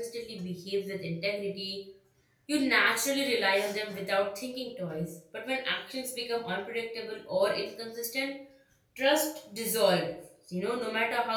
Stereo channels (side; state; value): both; identical; correlation 1.00